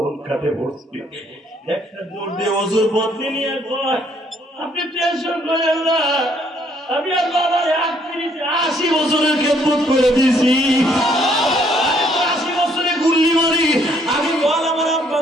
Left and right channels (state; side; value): normal; both; correlation 0.66